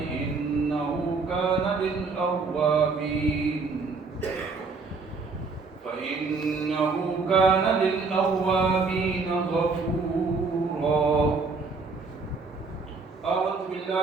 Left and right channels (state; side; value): quieter; left; 4.3 dB